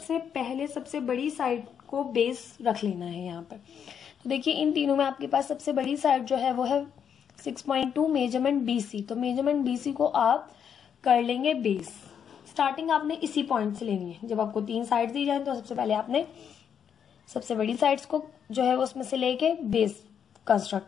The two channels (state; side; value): quieter; right; 7.9 dB